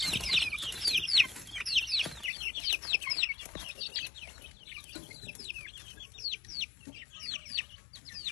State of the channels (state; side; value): drops out; right; at 2.3 s